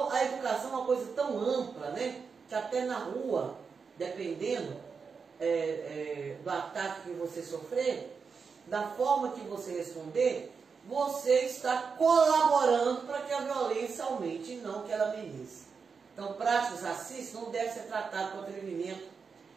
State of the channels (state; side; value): quieter; left; 5.5 dB